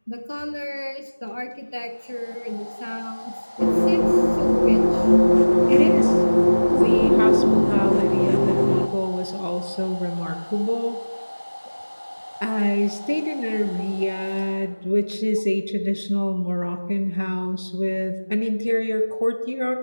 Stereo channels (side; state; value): both; inverted; correlation -1.00